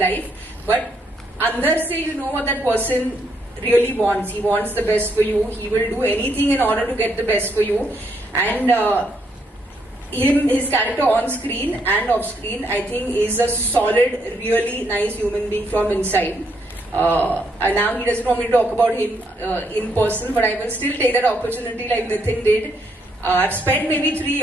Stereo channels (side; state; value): both; normal; correlation 0.74